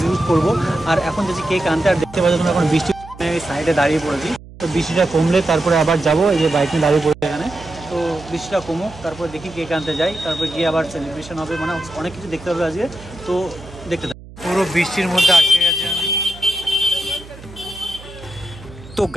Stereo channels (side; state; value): right; noise; hum, 18 dB below the sound